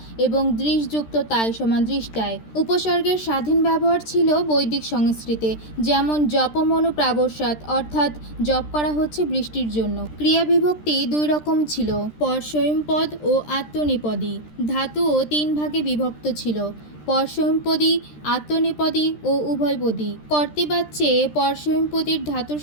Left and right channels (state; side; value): late; right; 13 ms